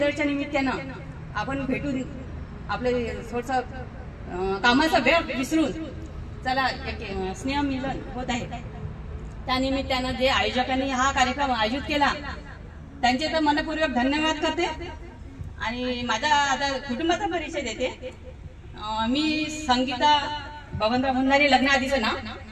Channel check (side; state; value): both; identical; correlation 1.00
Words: निमित्तानं आपण भेटून आपले थोडंसं कामाचा वेळ विसरून चला एक स्नेह मिलन होत आहे. त्या निमित्तानं जे आयोजकांनी हा कार्यक्रम आयोजित केला त्यांचे तर मनपूर्वक धन्यवाद करते. आणि माझा आता कुटुंबाचा परिचय देते. मी संगीता बबनराव भंडारी, लग्नाआधीचं नाव,